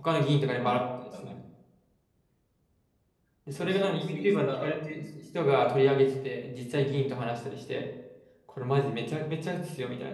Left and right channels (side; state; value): both; identical; correlation 1.00